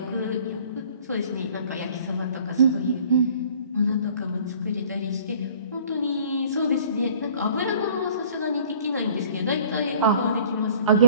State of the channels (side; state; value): both; inverted; correlation -0.53